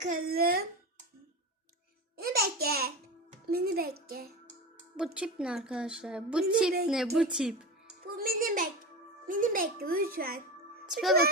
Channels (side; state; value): both; normal; correlation 0.25